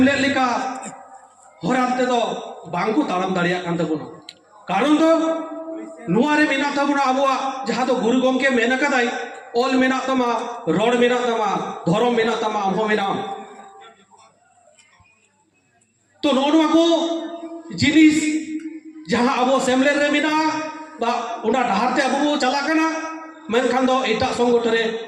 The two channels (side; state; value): both; identical; correlation 1.00